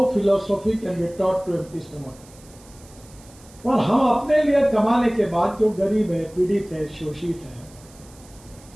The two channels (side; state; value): right; noise; hiss, 24 dB below the sound